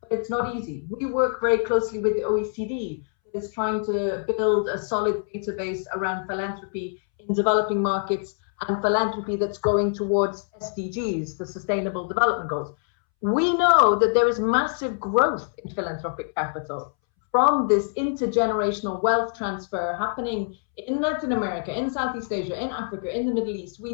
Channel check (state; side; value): silent; right; 62 dB below the other